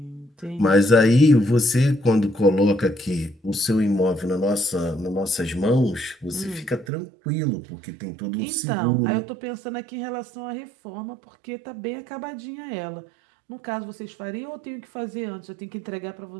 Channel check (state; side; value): drops out; left; at 6.9 s